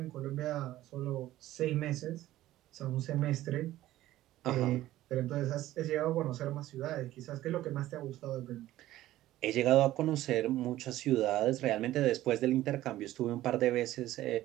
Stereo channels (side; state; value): left; quieter; 15.0 dB